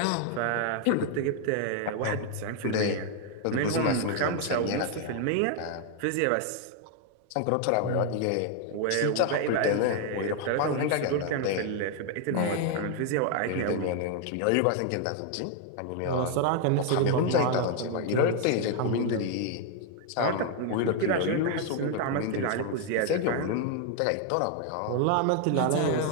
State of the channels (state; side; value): different; both; correlation 0.00